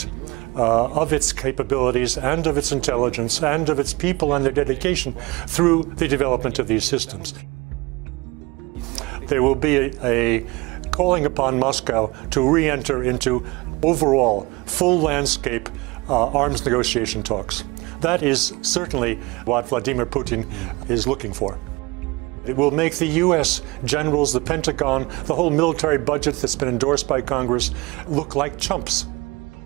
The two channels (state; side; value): quieter; left; 23.8 dB